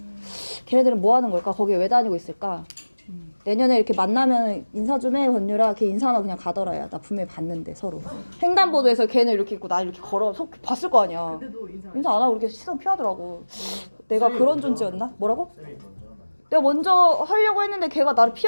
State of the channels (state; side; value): inverted; both; correlation -1.00